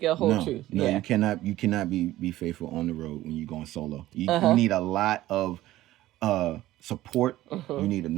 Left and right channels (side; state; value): left; quieter; 15.5 dB